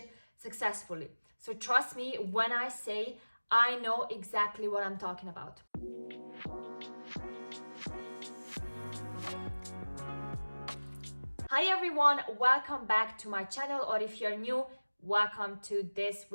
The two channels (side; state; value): both; inverted; correlation -1.00